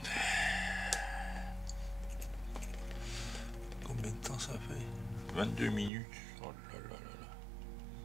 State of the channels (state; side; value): drops out; left; at 5.9 s